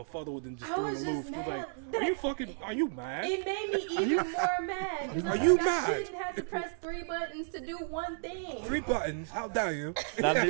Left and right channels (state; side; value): silent; left; digital silence